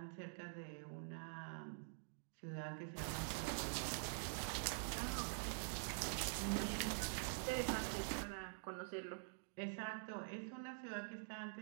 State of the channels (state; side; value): silent; left; digital silence